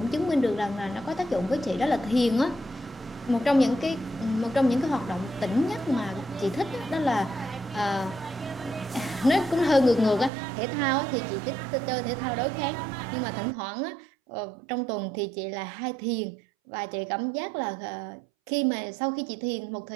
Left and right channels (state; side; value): drops out; left; at 10.3 s